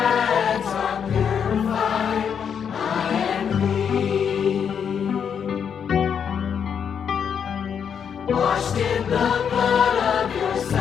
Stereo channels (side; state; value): right; quieter; 7.5 dB